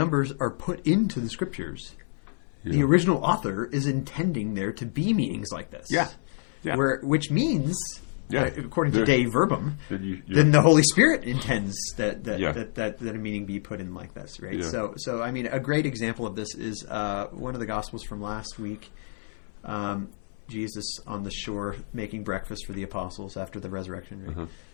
are put into the scriptures, the original author is intending there to be meanings like this. Yeah. Which means, according to Dei Verbum, then the Holy Spirit intends that a meaning be put in like this, right? Yeah. So I mean, a great example of this is one of the Gospels from last week. Jesus on the shore making breakfast for the apostles after the resurrection. Right?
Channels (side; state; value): right; silent; digital silence